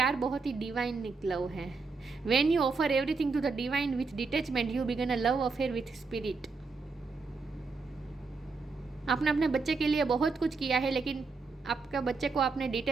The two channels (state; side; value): quieter; left; 4.3 dB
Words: बहुत ही डिवाइन लव है। When you offer everything to the divine with detachment you begin a love affair with spirit. आपने अपने बच्चे के लिए बहुत कुछ किया है, लेकिन आपका बच्चे को आपने